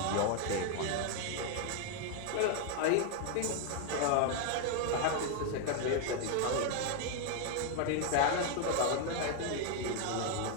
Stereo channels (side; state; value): both; different; correlation 0.00